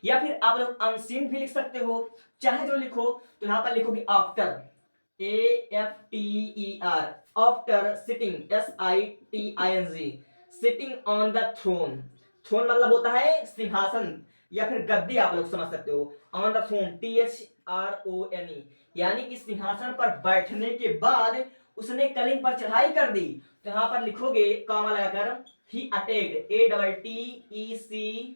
या फिर आप लोग अनसीन भी लिख सकते हो, चाहे जो लिखो। तो यहां पर लिखोगे after, AFTER, after sitting, SITING, sitting on the throne. Throne मतलब होता है सिंहासन या फिर गद्दी, आप लोग समझ सकते हो। ऑन द थ्रोन, THRONE, यानी कि सिंहासन पर बैठने के बाद उसने कलिंग पर चढ़ाई कर दी। तो यहां पर लिखोगे कॉमा लगाकर ही अटैक्ड, ATTECED,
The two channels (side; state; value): both; inverted; correlation -1.00